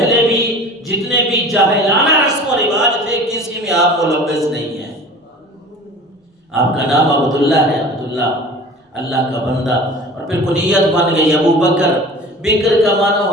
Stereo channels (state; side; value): normal; both; correlation 0.40